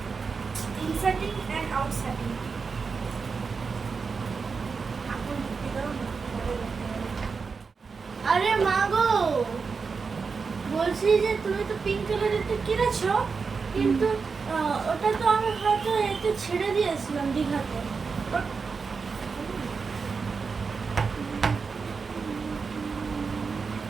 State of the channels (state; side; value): quieter; left; 5.1 dB